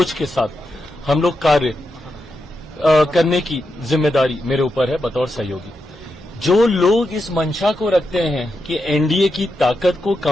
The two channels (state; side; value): normal; both; correlation 0.86